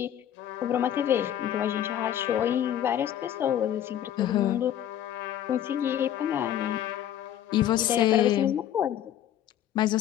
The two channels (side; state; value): right; quieter; 10.9 dB